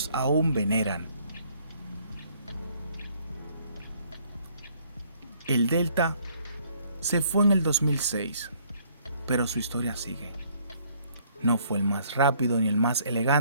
aún veneran. El Delta se fue en el 2006, pero su historia sigue. No fue el más rápido ni el más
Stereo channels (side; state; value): both; inverted; correlation -0.63